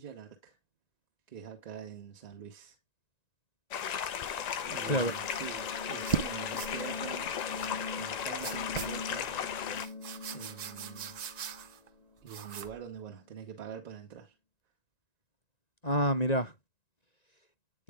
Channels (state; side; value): late; right; 1.9 ms